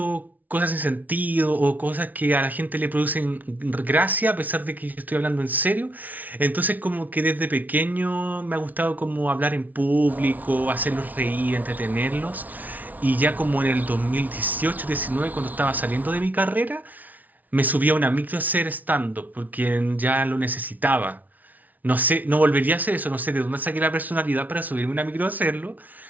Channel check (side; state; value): left; late; 0.077 ms